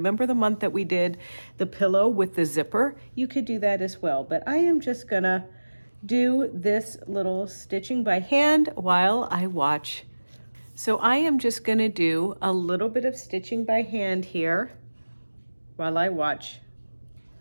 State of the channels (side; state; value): both; inverted; correlation -1.00